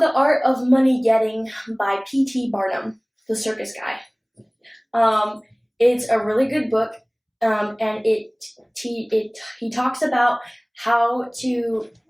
Art of Money Getting by P.T. Barnum, the circus guy. It's a really good book, and he talks about how to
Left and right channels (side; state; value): both; identical; correlation 1.00